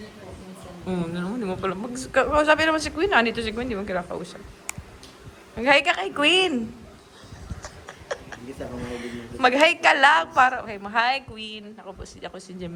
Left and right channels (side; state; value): both; identical; correlation 1.00